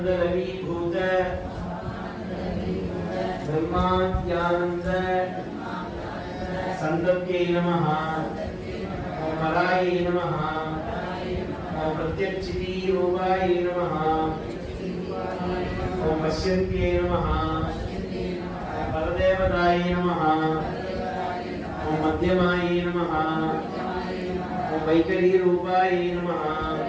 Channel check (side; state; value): both; identical; correlation 1.00